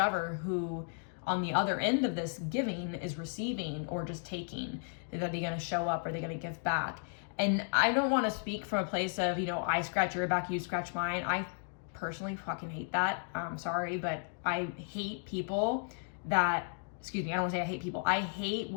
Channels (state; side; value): silent; right; 55 dB below the other